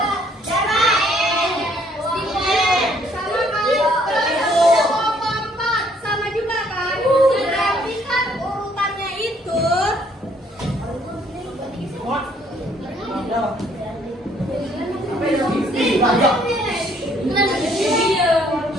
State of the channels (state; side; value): normal; both; correlation 0.64